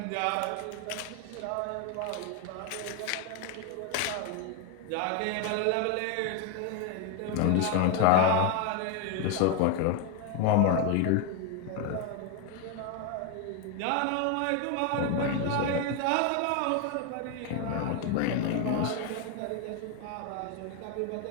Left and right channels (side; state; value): both; different; correlation 0.01